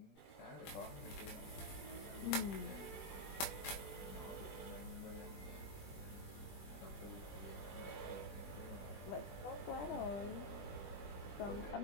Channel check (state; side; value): late; right; 20 ms